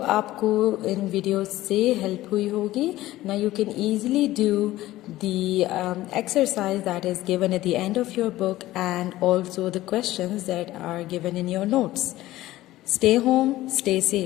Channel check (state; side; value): quieter; right; 16.1 dB